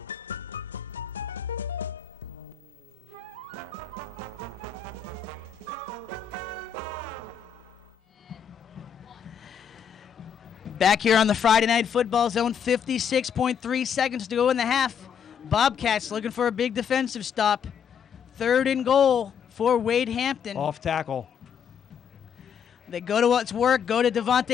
Back here on the Friday Night Football Zone, 56.3 seconds to go in the half. Bobcats looking for a big defensive stop. 3rd and goal for Wade Hampton. Off tackle. They go to what's work, go to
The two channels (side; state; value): right; quieter; 7.7 dB